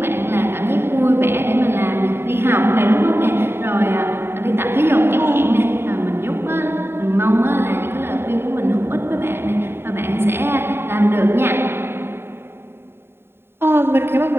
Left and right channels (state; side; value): late; left; 0.11 ms